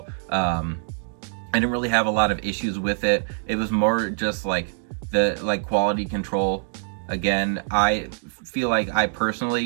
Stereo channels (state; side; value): silent; left; digital silence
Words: I didn't really have a lot of issues with it. It was more just like the quality control. Again, I feel like I